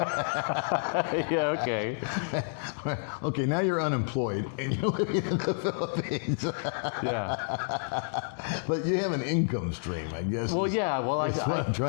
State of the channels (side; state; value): right; silent; digital silence